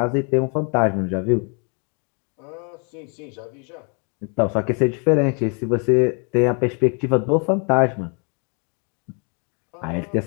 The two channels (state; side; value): quieter; right; 37.3 dB